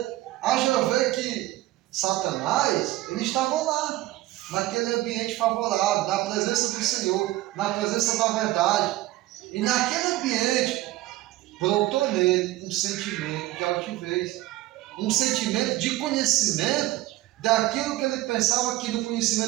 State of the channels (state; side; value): quieter; left; 17.1 dB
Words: Haja ver que Satanás, ele estava lá, naquele ambiente favorável, na presença do Senhor, na presença da verdade. E naquele ambiente, brotou nele um sentimento de altivez, um sentimento de conhecimento daquilo que ele pensava que no